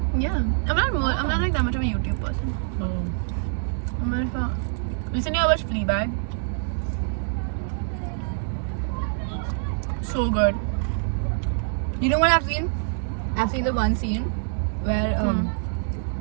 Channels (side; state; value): left; silent; digital silence